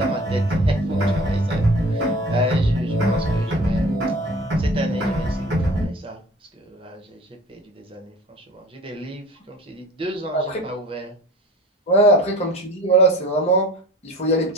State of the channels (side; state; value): both; normal; correlation 0.43